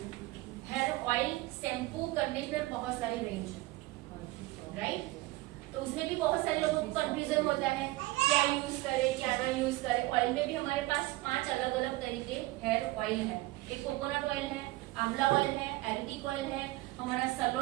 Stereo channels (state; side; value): quieter; left; 19.7 dB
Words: हेयर ऑयल, शैम्पू, कंडीशनर, बहुत सारी रेंज है, राइट। तो उसमें भी बहुत सारे लोगों को कंफ्यूजन होता है, क्या यूज करें क्या ना यूज करें। ऑयल में भी हमारे पास 5 अलग अलग तरीके हेयर ऑयल है। एक कोकोनट ऑयल है, आंवला ऑयल है, एलोवेरा ऑयल है, हमारा